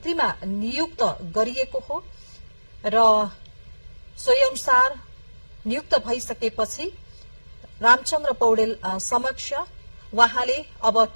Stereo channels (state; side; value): inverted; both; correlation -1.00